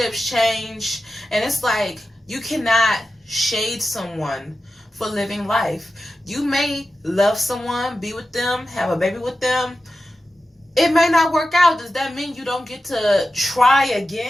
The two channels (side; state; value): both; normal; correlation 0.92